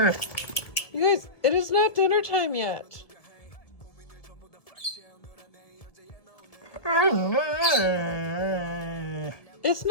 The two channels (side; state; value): right; late; 1.8 ms